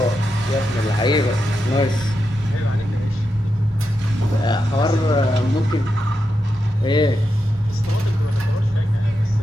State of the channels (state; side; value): normal; both; correlation 0.87